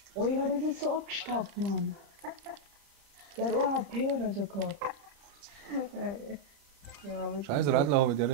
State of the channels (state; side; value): late; left; 30 ms